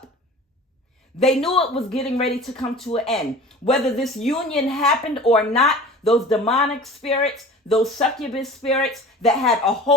They knew it was getting ready to come to an end. Whether this union happened or not, those demonic spirits, those succubus spirits that had a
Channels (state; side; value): normal; both; correlation 0.40